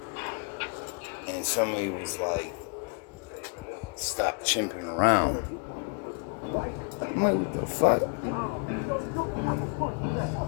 somebody was stop chimping around. I'm what the fuck?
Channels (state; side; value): quieter; right; 36.7 dB